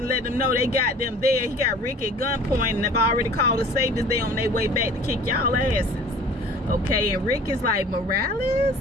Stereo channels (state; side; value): normal; both; correlation 0.47